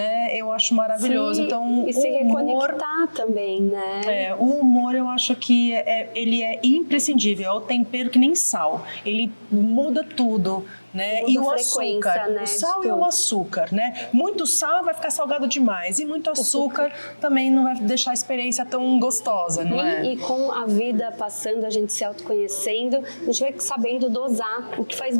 eu acho maravilhoso. Sim, então, e se reconectar também, né? O humor eu acho que ele é imprescindível, é o tempero que nem sal, ele muda tudo. Né? E o açúcar, né? O sal e o açúcar, né? Muito sal vai ficar salgado demais e muito açúcar também não vai deixar a experiência tão gostosa, não é? E com a vida passando, a gente se autoconhecendo, a gente vai sabendo dosar o que faz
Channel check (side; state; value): both; inverted; correlation -1.00